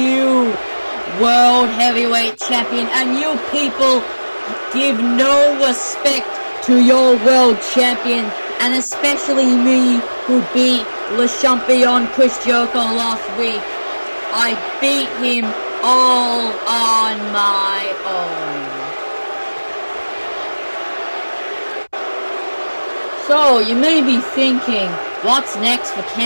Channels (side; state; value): both; inverted; correlation -1.00